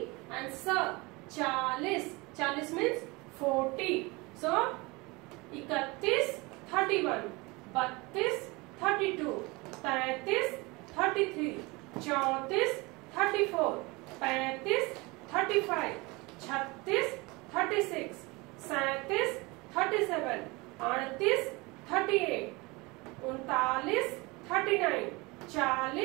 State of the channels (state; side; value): quieter; left; 24.9 dB